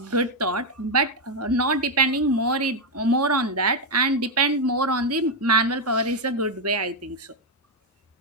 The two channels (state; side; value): normal; both; correlation 0.03